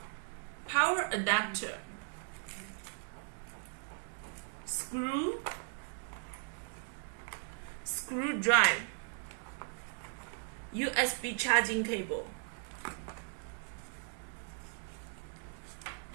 Power adapter. Screw drive. USB charging cable.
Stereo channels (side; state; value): left; silent; 53 dB below the other